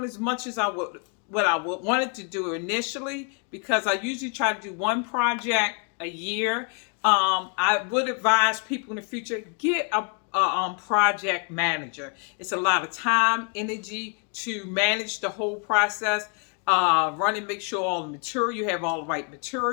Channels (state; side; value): quieter; right; 37.9 dB